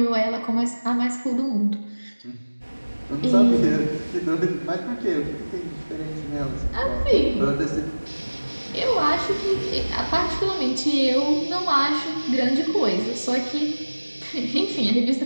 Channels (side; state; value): both; inverted; correlation -1.00